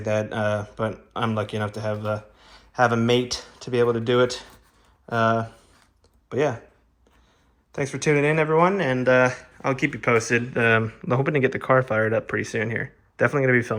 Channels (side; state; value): both; identical; correlation 1.00